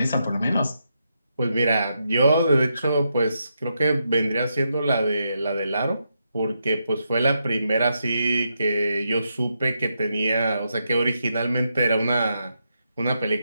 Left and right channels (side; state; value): both; inverted; correlation -0.83